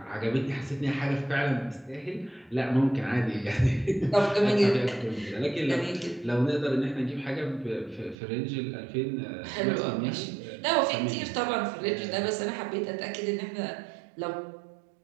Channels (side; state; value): left; drops out; at 8.2 s